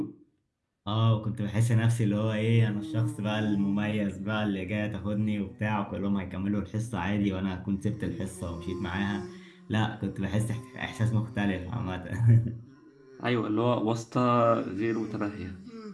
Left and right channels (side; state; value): both; identical; correlation 1.00